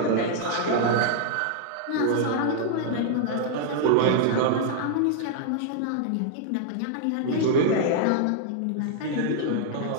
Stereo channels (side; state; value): both; different; correlation -0.01